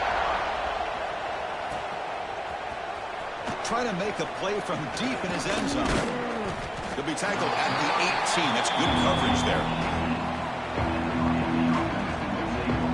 Try to make a play from deep in his end zone. He'll be tackled at the 18. That's good coverage there.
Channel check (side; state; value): both; identical; correlation 1.00